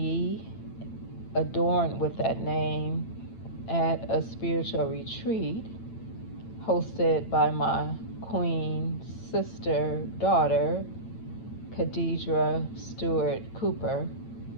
adorned with that name at a spiritual retreat hosted by my queen sister daughter, Khadijah Stewart Cooper,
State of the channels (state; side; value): late; right; 8.9 ms